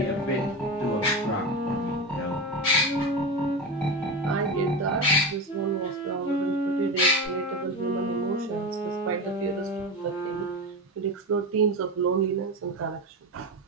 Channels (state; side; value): normal; both; correlation 0.21